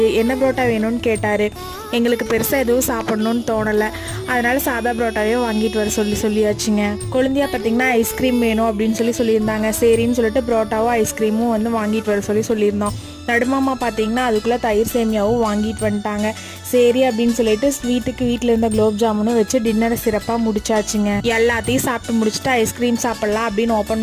என்ன புரோட்டா வேணும்னு கேட்டார். எங்களுக்கு பெருசாக எதுவும் சாப்பிட்ணுன்னு தோணலை, அதனால் சாதா புரோட்டாவே வாங்கிட்டு வர சொல்லியாச்சுங்க. குழந்தையா பார்த்திங்கன்னா ஐஸ்கிரீம் வேணும் அப்படின்னு சொல்லியிருந்தாங்க. சரின்னு சொல்லிட்டு புரோட்டாவும் ஐஸ்கிரீமும் வந்து வாங்கிட்டு வர சொல்லியிருந்தோம். நடுமாமா பார்த்திங்கன்னா அதுக்குள்ளே தயிர் சேமியாவும் வாங்கிட்டு வந்துட்டாங்க. சரி அப்படின்னு சொல்லிட்டு வீட்டில் இருந்த குலோப் ஜாமுனும் வச்சு டின்னரை சிறப்பாக முடிச்சாச்சுங்க. எல்லாத்தையும் சாப்பிட்டு முடிச்சுட்டு ஐஸ்கிரீம் சாப்பிட்லாம் அப்படின்னு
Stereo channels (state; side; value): identical; both; correlation 1.00